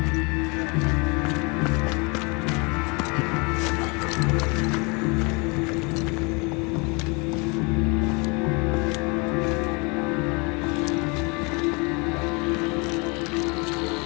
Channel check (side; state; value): right; quieter; 30.1 dB